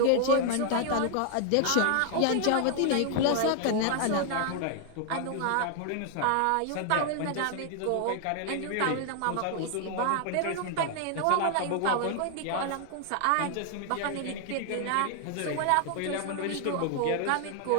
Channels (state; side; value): different; both; correlation 0.00